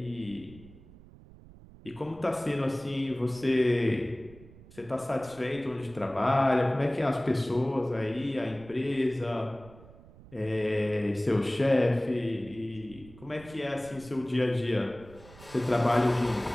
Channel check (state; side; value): noise; right; rumble, 21 dB below the sound